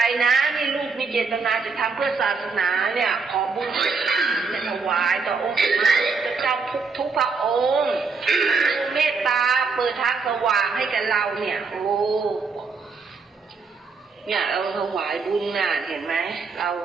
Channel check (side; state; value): left; quieter; 4.7 dB